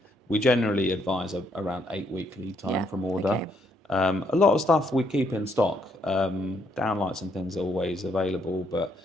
we generally advise around 8-week lead time from order. Okay. A lot of stuff we keep in stock. Downlights and things are always available, but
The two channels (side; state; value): both; normal; correlation 0.72